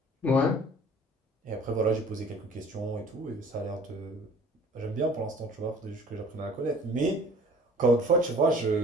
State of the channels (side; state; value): both; normal; correlation 0.49